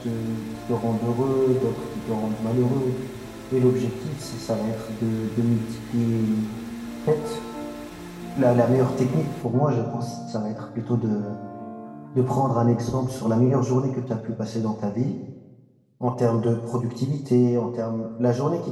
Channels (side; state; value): both; identical; correlation 1.00